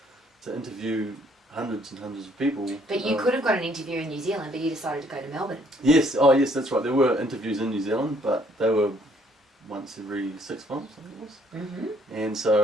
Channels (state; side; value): normal; both; correlation 0.65